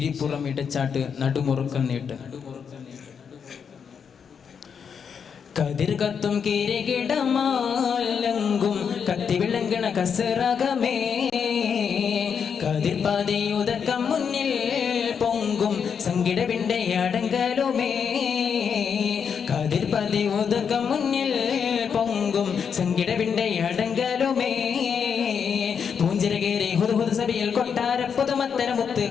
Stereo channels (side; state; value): right; quieter; 6.9 dB